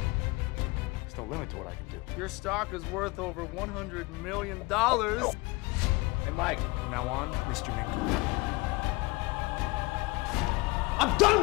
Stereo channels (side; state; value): right; quieter; 23.8 dB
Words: There's no limit to what I can do. Your stock is worth over $100 million. Hey, Mike. From now on, Mr. Minko. I'm done